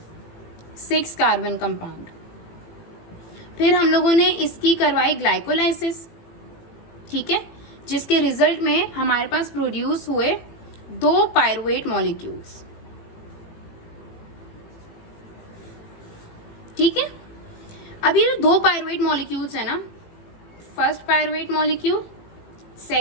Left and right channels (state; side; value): late; right; 18 ms